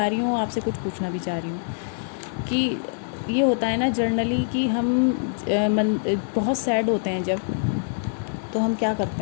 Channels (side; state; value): right; silent; digital silence